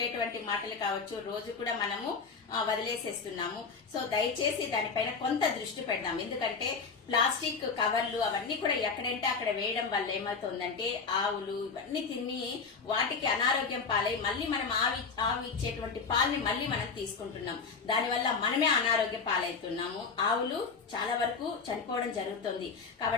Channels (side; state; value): right; quieter; 5.0 dB